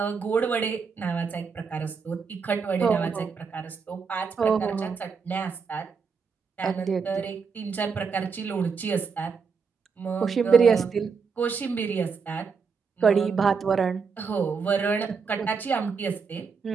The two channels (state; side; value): quieter; left; 5.5 dB